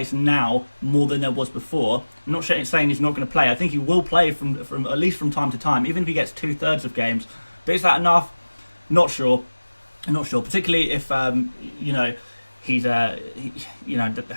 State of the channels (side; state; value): both; inverted; correlation -1.00